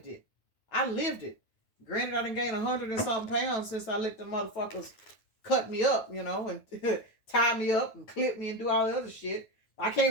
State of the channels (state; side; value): late; right; 9.4 ms